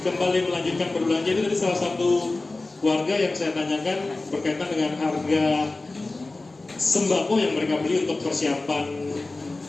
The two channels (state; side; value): quieter; right; 3.2 dB